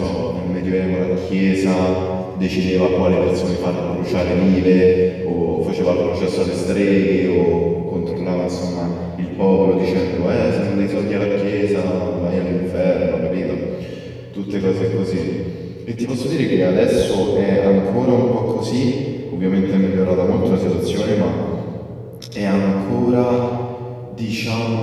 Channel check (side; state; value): both; identical; correlation 1.00